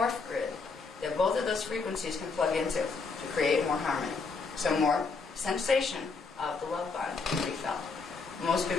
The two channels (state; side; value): quieter; right; 4.5 dB